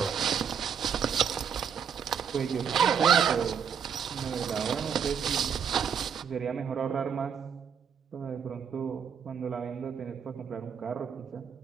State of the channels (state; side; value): quieter; left; 7.3 dB